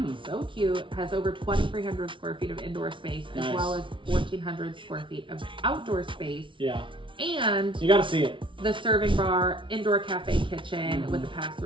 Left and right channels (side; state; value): left; late; 0.25 ms